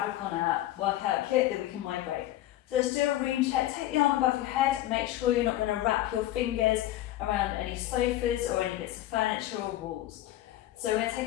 on a workout kit that we can migrate. So let's do a ream check. Take the arm above your head, make sure you're not going to wrap your fingers around any sofas or any bits of furniture or walls. So we're going to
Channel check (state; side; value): quieter; right; 14.6 dB